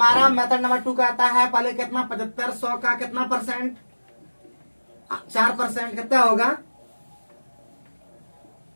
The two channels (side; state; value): both; inverted; correlation -1.00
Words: मेथड नंबर 2 कहता है पहले कितना 7500 का कितना %, 4%, कितना होगा,